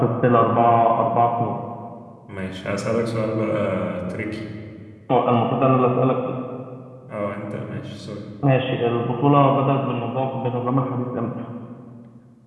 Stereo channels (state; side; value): identical; both; correlation 1.00